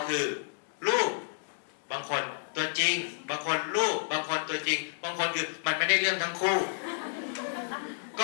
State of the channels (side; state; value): right; silent; digital silence